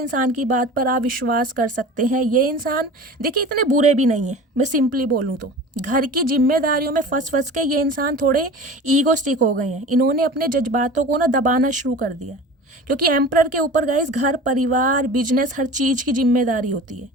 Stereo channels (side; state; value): both; normal; correlation 0.37